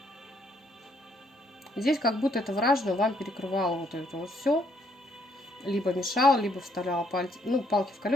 Здесь как будто это вражина вам перекрывало вот это вот все. Либо мешал, либо вставляла палки в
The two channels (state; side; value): normal; both; correlation 0.70